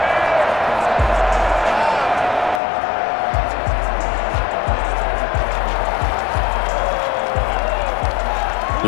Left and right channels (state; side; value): drops out; right; at 2.6 s